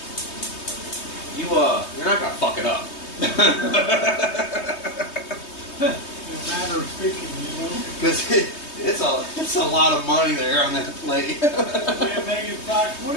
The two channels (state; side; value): late; right; 3.2 ms